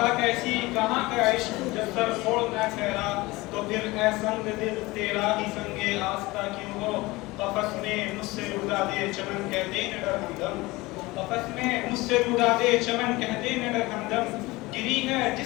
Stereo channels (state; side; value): quieter; right; 21.2 dB